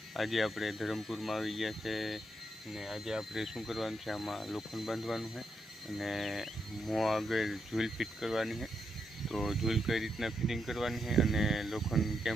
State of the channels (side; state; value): both; normal; correlation 0.82